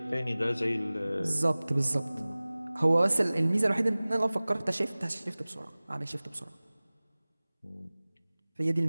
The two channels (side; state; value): both; inverted; correlation -0.99